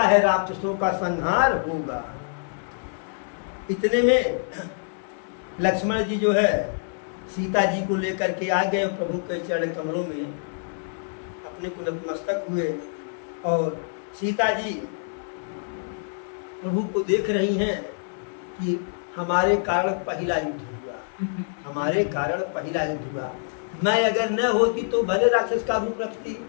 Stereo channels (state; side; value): silent; right; 61 dB below the other